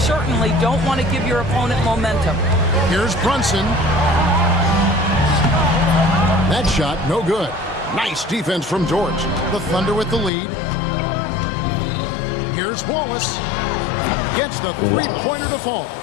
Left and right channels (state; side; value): drops out; right; at 10.3 s